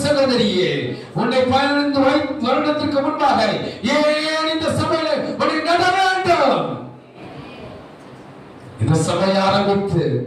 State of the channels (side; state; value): both; identical; correlation 1.00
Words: சகோதரியே, உன்னை 15 வருடத்திற்கு முன்பாக ஏன் இந்த சபையில உன்னை நட வேண்டும்? இந்த சபை ஆரம்பித்து